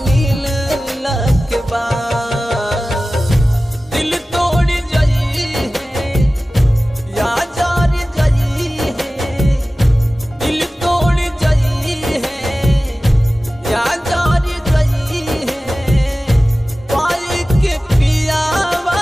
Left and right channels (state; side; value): normal; both; correlation 0.96